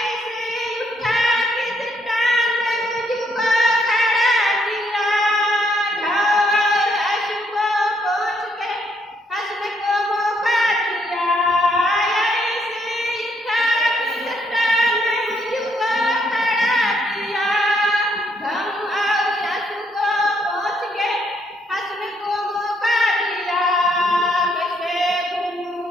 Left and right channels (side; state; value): both; normal; correlation 0.72